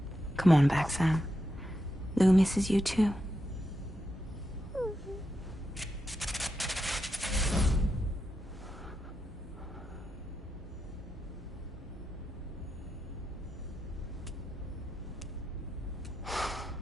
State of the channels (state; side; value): normal; both; correlation 0.86